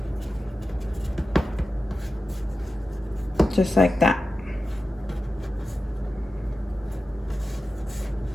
Just like that.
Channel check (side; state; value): both; normal; correlation 0.92